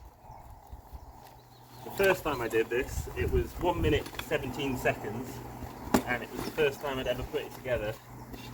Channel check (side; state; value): both; identical; correlation 1.00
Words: The first time I did this, it was 1 minute 17 seconds, and it was the first time I'd ever put it together